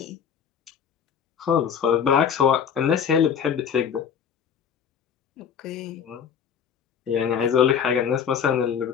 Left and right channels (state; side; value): quieter; right; 7.7 dB